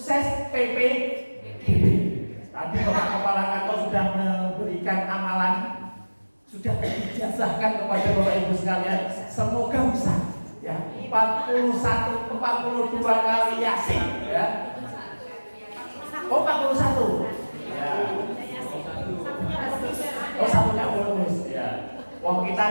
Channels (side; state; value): both; inverted; correlation -1.00